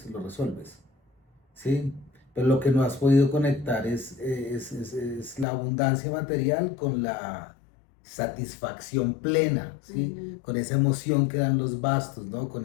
lo resuelves, ¿sí? Pero lo que no has podido conectar es la abundancia material con la satisfacción plena, ¿sí? Con esa emoción que dan los bastos, ¿no?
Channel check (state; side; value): drops out; right; at 5.5 s